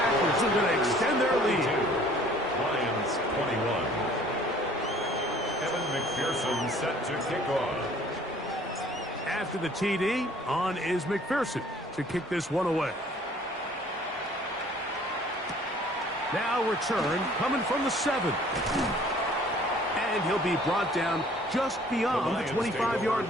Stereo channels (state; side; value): normal; both; correlation 0.55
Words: are going to extend their lead. Lions 21. Evan McPherson set to kick off. After the TD, on is McPherson to kick this one away. Now return coming from the 7. And he'll be brought down just beyond the 25-yard